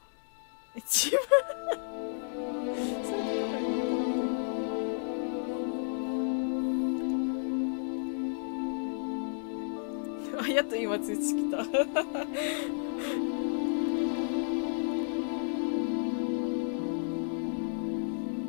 一番あ、やっと今通知来た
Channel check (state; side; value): silent; right; digital silence